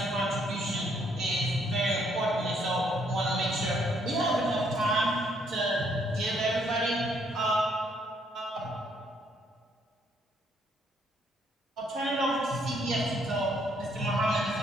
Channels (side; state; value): both; normal; correlation 0.69